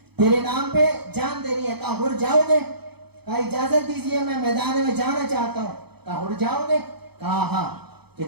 तेरे नाम पे जान देनी है। कहा हुर जाओगे? कहा इजाजत दीजिए मैं मैदान में जाना चाहता हूँ। कहा हुर जाओगे? कहा हाँ। तो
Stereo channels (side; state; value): left; late; 0.98 ms